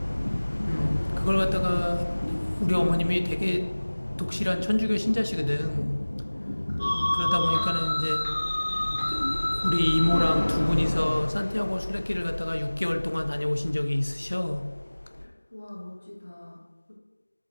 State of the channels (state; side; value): inverted; both; correlation -1.00